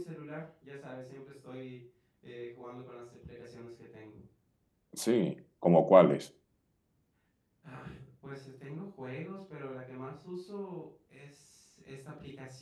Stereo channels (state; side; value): identical; both; correlation 1.00